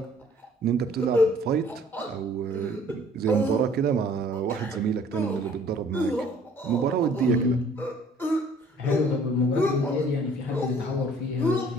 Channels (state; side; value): normal; both; correlation 0.55